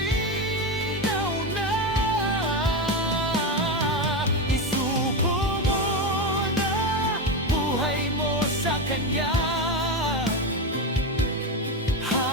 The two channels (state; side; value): normal; both; correlation 0.15